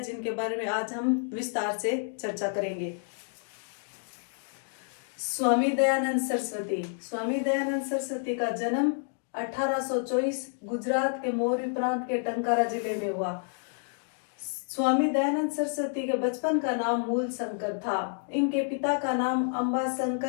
जिनके बारे में आज हम विस्तार से चर्चा करेंगे। स्वामी दयानंद सरस्वती का जन्म 1824 गुजरात के मोरबी प्रांत के टंकारा जिले में हुआ। स्वामी दयानंद सरस्वती के बचपन का नाम मूल शंकर था। इनके पिता का नाम अंबा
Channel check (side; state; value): right; silent; digital silence